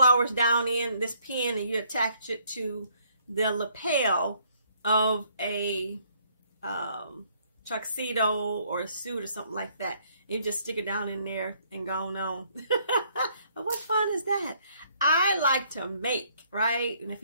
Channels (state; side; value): inverted; both; correlation -0.66